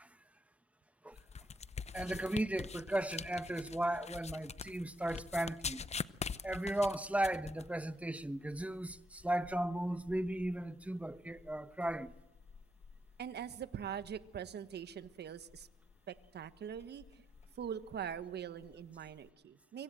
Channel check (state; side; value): normal; both; correlation 0.80